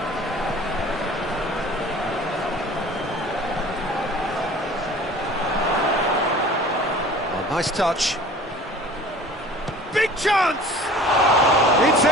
Oh, nice touch. Big chance! It's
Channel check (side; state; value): both; normal; correlation 0.45